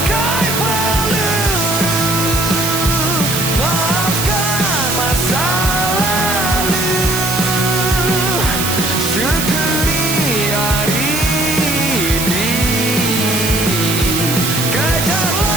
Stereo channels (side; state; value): right; noise; hiss, 2 dB below the sound